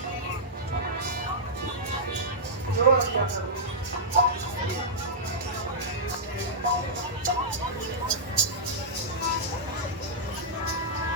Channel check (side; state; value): both; normal; correlation -0.11